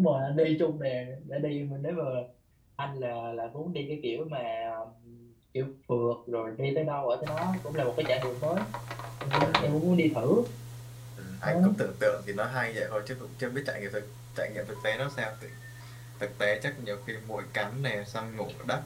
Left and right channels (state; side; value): identical; both; correlation 1.00